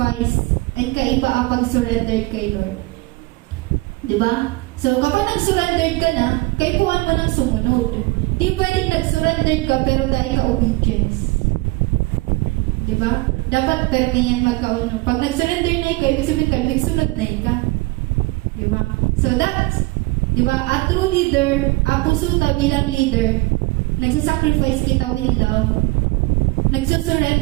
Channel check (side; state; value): left; quieter; 22.4 dB